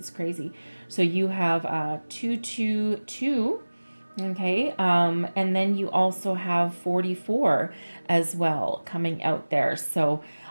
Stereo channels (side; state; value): both; inverted; correlation -1.00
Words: crazy. So you have 222. Okay, and then you also have 44 as well coming out there. So